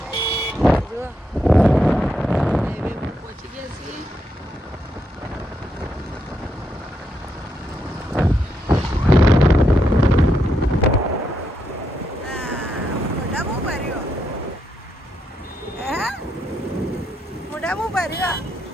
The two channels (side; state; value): both; normal; correlation 0.80